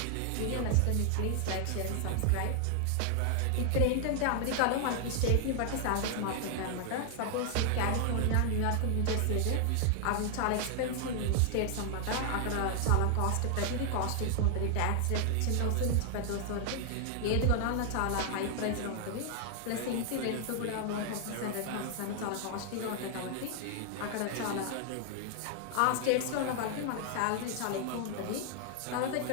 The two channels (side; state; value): both; different; correlation 0.00